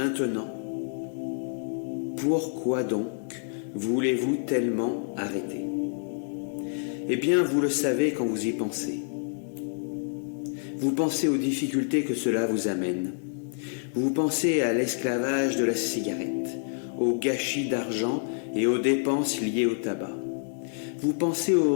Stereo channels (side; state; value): right; silent; digital silence